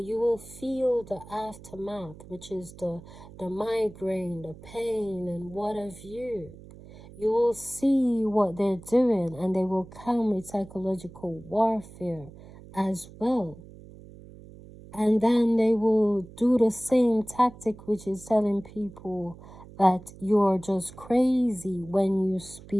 will feel the aftermath, which is the migraine, the pain, and what have you. You will see what they're doing, and they will come with psychological warfare as well. And then they will do the same tactic, which is telling people that you're just crazy when you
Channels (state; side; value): noise; right; hum, 18 dB below the sound